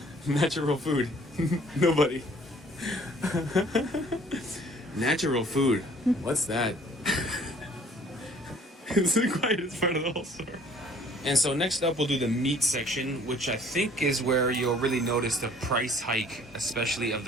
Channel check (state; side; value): normal; both; correlation 0.55